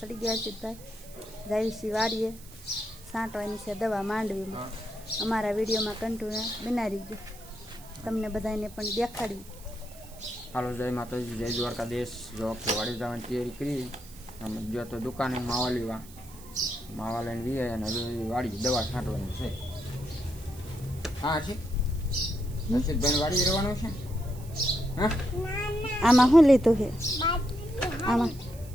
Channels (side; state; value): right; noise; hiss, 20 dB below the sound